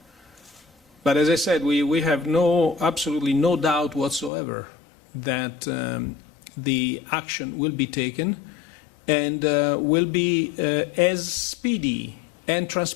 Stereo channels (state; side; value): drops out; right; at 4.3 s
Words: But as I said, we have absolutely no doubt whatsoever that the action will be taken and will be as speedy and